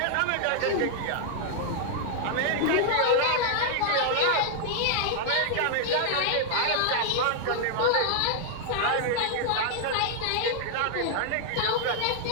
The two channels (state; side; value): different; both; correlation 0.00